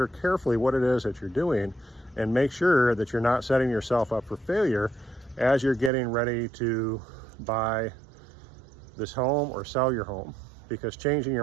carefully what it is that you're doing and make sure that you're not setting yourself up for failure as you're getting ready to buy this home or sell your home, because changing your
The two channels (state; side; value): drops out; left; at 5.9 s